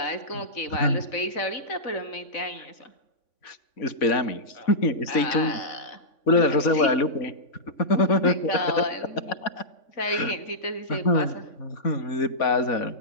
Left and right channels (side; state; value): right; late; 3.5 ms